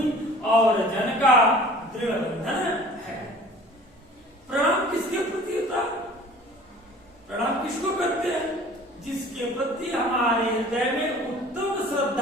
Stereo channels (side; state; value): both; normal; correlation 0.46